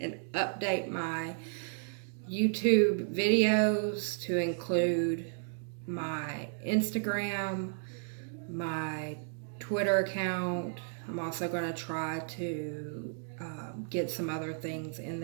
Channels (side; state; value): left; silent; digital silence